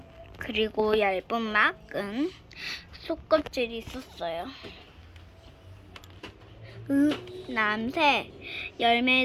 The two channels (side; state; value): both; identical; correlation 1.00